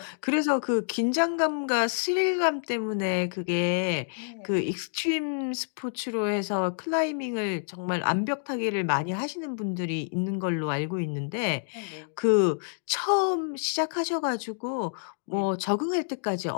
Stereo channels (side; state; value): right; silent; digital silence